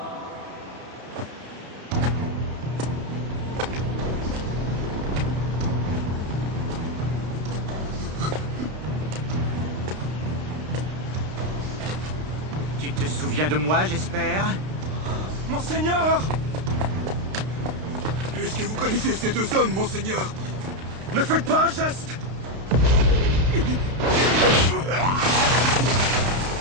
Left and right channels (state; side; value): late; left; 32 ms